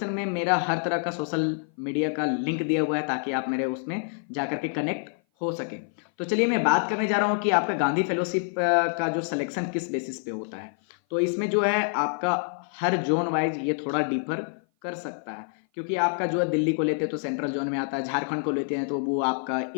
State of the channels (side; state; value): right; silent; 56 dB below the other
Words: में मेरा हर तरह का सोशल मीडिया का लिंक दिया हुआ है ताकि आप मेरे उसमें जाकर के कनेक्ट हो सके। तो चलिए मैं बात करने जा रहा हूँ कि आपका गांधी फेलोशिप का जो सिलेक्शन किस बेसिस पे होता है। तो इसमें जो है आपका हर जोन वाइज ये थोड़ा डिफर कर सकता है, क्योंकि आपका जो है दिल्ली को लेते हैं तो सेंट्रल जोन में आता है, झारखंड को लेते हैं तो वो आपका